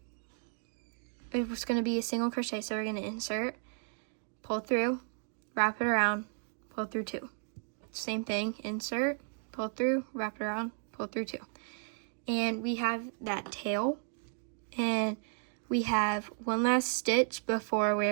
it was going to be a single crochet, so we're going to insert, pull through, wrap it around, pull through 2. Same thing, insert, pull through, wrap it around, pull through 2. And we have that tail, and we have one last stitch before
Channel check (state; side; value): silent; left; 55 dB below the other